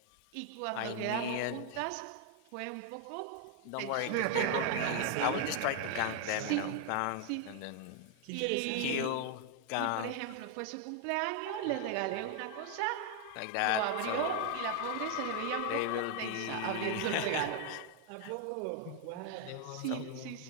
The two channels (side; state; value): both; different; correlation 0.00